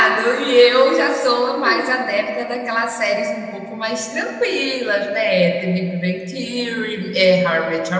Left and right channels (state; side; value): identical; both; correlation 1.00